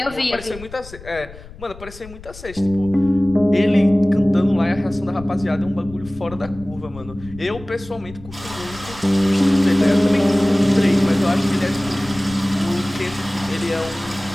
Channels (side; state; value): left; noise; rumble, 17 dB below the sound